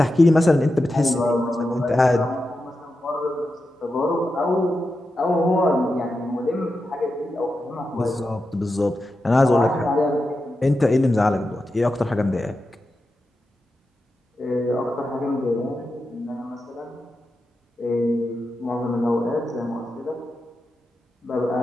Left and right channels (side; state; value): both; normal; correlation 0.90